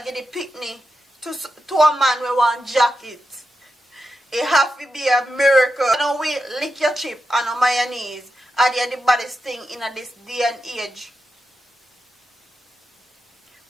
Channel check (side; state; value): both; normal; correlation 0.88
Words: get the picnic. To a man we want jacket. It have to be a miracle. Now we lick your chip and on mayonnaise. Are they the baddest thing in this day and age?